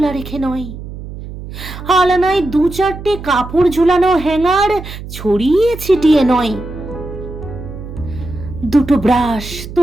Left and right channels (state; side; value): noise; right; hum, 11 dB below the sound